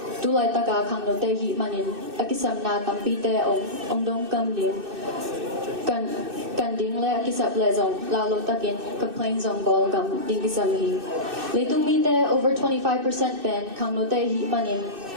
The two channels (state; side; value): late; left; 2.6 ms